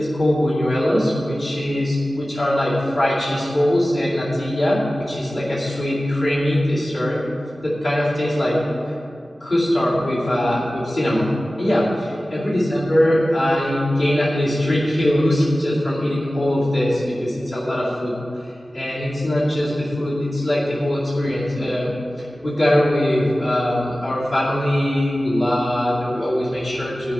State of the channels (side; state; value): both; normal; correlation 0.96